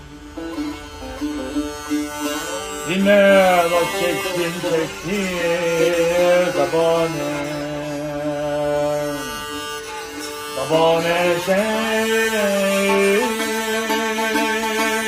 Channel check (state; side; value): identical; both; correlation 1.00